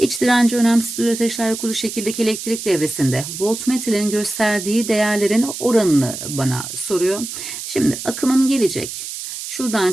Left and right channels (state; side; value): noise; right; hiss, 8 dB below the sound